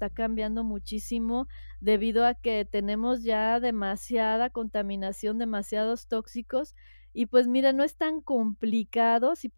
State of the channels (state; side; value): inverted; both; correlation -1.00